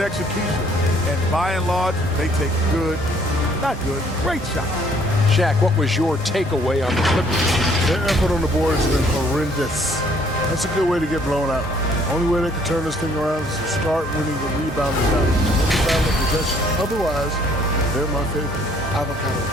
execution, and by and large, they take great shots. Shaq, what was your takeaway on the Clippers? Their effort on the board has been horrendous. That's a good way to get blown out. Only way they can turn this thing around is to start winning the rebounding battle. Possession. Otherwise, they're my favorite. Avocado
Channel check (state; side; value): normal; both; correlation 0.62